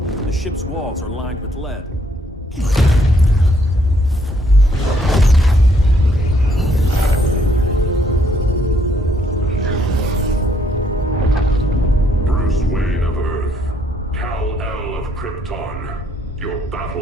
The ship's walls are lined with lead. Bruce Wayne of Earth, Kal-El of Krypton. Your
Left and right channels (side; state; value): both; normal; correlation 0.69